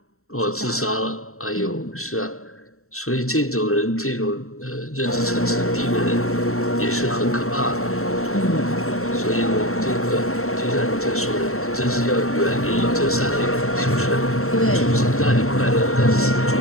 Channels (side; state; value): right; late; 0.63 ms